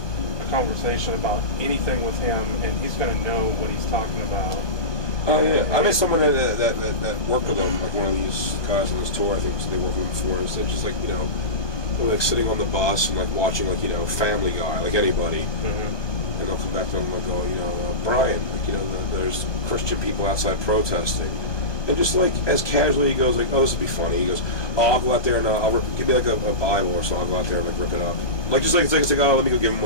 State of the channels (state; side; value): late; right; 1.2 ms